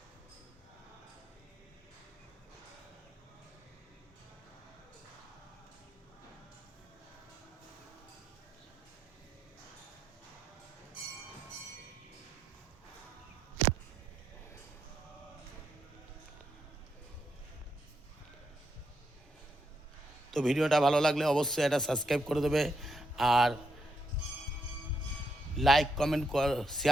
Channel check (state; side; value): normal; both; correlation 0.81